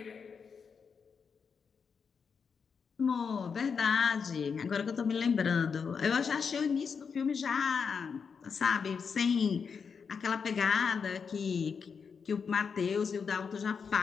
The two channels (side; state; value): right; quieter; 6.0 dB